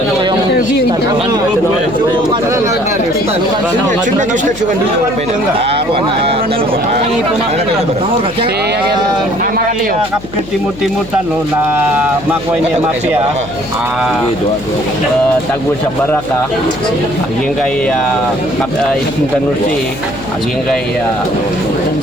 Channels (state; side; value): noise; left; hum, 15 dB below the sound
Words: Timut-timut na makuha niya mafia tagul sa baraka aging kay Tanusi aging kay